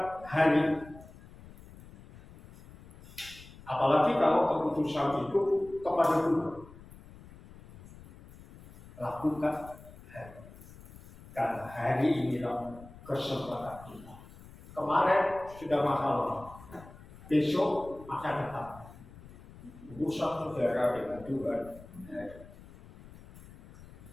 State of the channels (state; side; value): noise; left; rumble, 19 dB below the sound